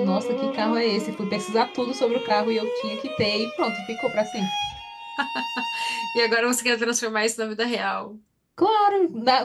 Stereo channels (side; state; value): both; identical; correlation 1.00